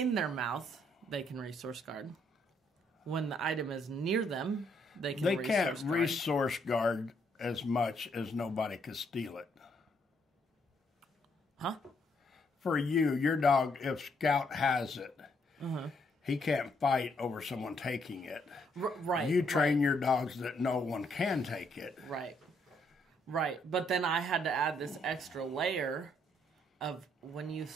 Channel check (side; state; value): both; normal; correlation 0.72